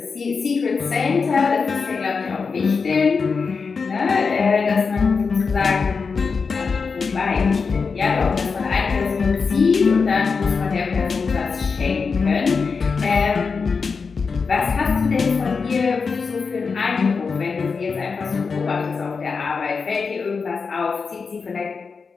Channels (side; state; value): right; quieter; 5.1 dB